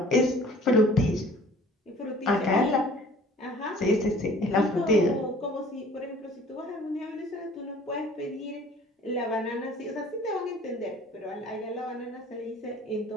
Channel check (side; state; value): both; normal; correlation 0.50